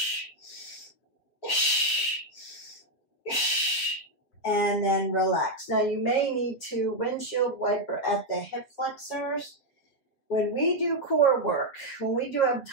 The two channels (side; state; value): right; late; 7.4 ms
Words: And then relax. Now you may need to windshield wiper at the hip flexors. When we do core work, when we do